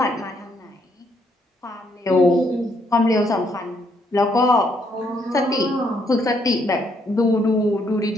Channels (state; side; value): normal; both; correlation 0.72